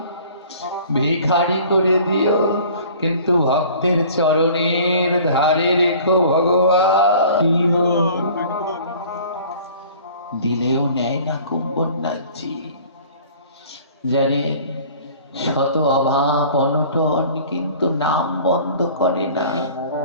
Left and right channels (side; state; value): both; inverted; correlation -0.48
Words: ভিখারি করে দিও, কিন্তু ভক্তের চরণের ধারে রেখো ভগবান। দিলেও নেয় না কুম্ভনাথজি। জানেন, শত অভাব অনটন, কিন্তু নাম বন্ধ করে না।